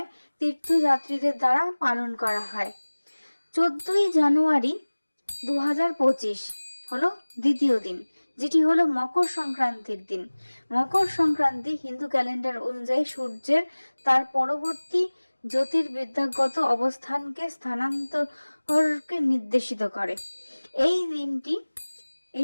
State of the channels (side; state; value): both; inverted; correlation -1.00